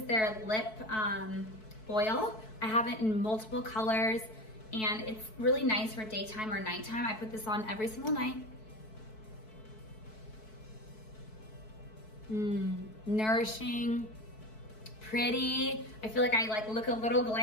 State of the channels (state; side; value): late; right; 4.6 ms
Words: their lip oil. I have it in multiple colors, and it's really nice for daytime or nighttime. I put this on every single night. Nourishing, pretty. I feel like I look a little